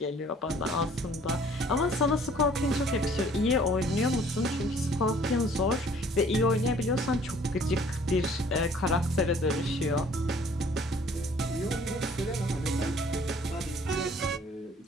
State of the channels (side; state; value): both; normal; correlation 0.56